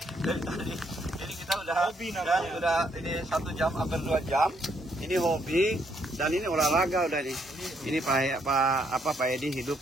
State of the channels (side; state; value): both; normal; correlation 0.72